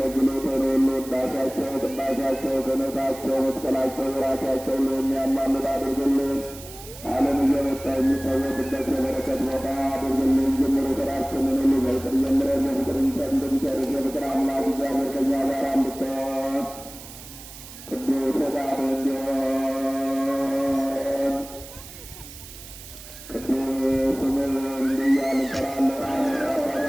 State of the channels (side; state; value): right; noise; hiss, 15 dB below the sound